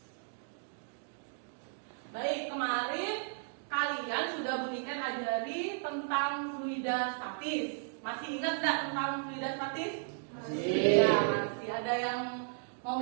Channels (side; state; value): left; silent; digital silence